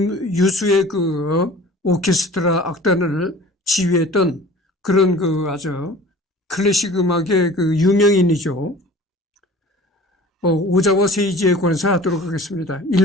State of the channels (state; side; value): normal; both; correlation 0.44